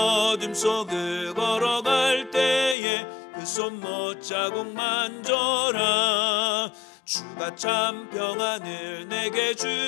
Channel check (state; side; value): drops out; right; at 2.8 s